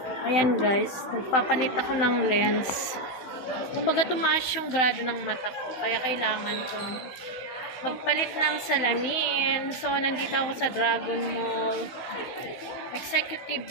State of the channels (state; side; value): late; right; 16 ms